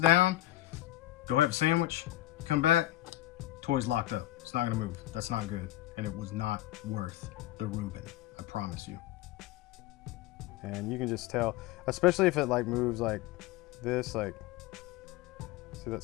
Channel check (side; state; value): right; quieter; 15.3 dB